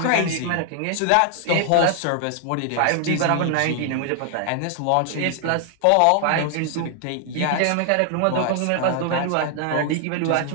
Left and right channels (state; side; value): different; both; correlation 0.00